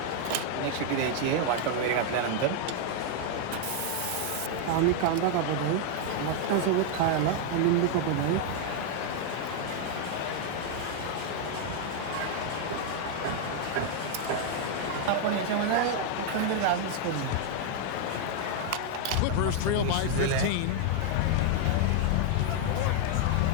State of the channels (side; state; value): both; different; correlation 0.00